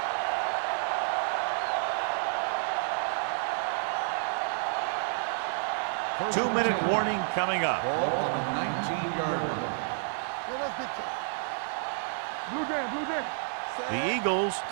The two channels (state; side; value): silent; left; 58 dB below the other